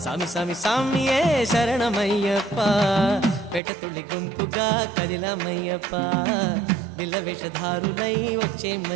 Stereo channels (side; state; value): left; drops out; at 3.6 s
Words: సామి సామి సామియే శరణమయ్యప్పా పేట తుళ్ళి గుంపుగా కదిలమయ్యప్పా నిల్ల వేషధారులై